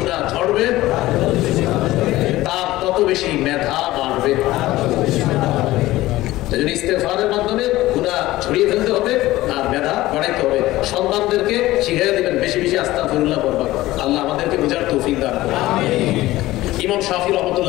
ঝরবে তার তত বেশি মেধা বাড়বে। ইস্তেগফারের মাধ্যমে গুনাহ ছড়িয়ে ফেলতে হবে আর মেধা বাড়াইতে হবে। সন্তানদেরকে শিখিয়ে দিবেন বেশি বেশি আস্তাগফিরুল্লাহ পড়বা। আল্লাহ আমাদেরকে বুঝার তৌফিক দান করুন। ইমাম শাফি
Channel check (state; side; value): quieter; right; 17.1 dB